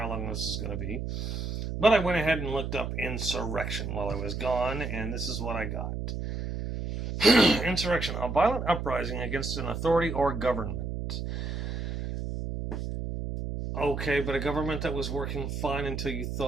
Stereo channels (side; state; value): right; noise; hum, 4 dB below the sound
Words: long this is going to be, but I went ahead and looked up insurrection while I was gone, and this is what I got. Insurrection: a violent uprising against an authority or government. Okay, but a government that was working fine until you